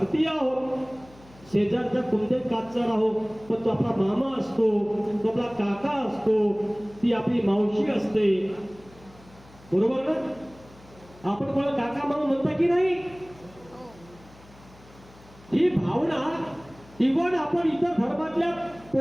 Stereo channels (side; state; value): left; noise; hum, 24 dB below the sound